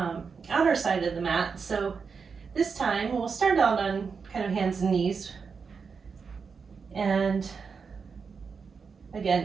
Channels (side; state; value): left; quieter; 5.5 dB